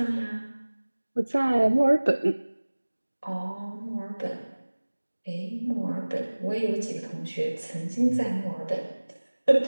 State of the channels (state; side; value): inverted; both; correlation -1.00